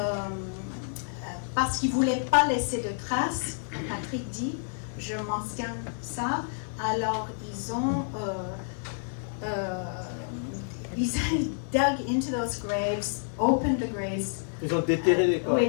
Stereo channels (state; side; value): silent; right; digital silence